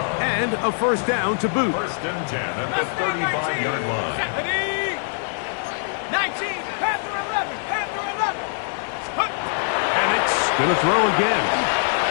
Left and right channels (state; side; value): silent; right; digital silence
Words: And a 1st down to boot. 1st and 10 at the 35-yard line. 19. Panther 11. Panther 11. Penix going to throw again.